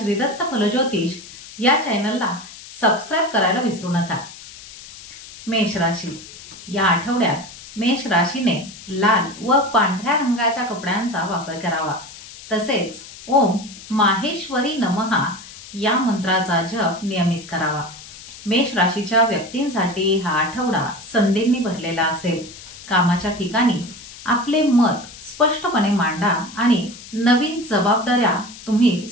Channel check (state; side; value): noise; left; hiss, 16 dB below the sound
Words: फलज्योतिष या चॅनलला सबस्क्राइब करायला विसरू नका. मेष राशी. या आठवड्यात मेष राशीने लाल व पांढऱ्या रंगाच्या कपड्यांचा वापर करावा. तसेच ओम माहेश्वरी नमः या मंत्राचा जप नियमित करावा. मेष राशीच्या व्यक्तींसाठी हा आठवडा संधींनी भरलेला असेल. कामाच्या ठिकाणी आपले मत स्पष्टपणे मांडा आणि नवीन जबाबदाऱ्या तुम्ही